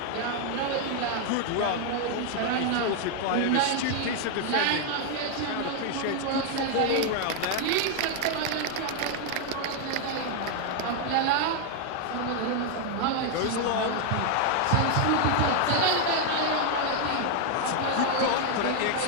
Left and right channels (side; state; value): both; different; correlation 0.00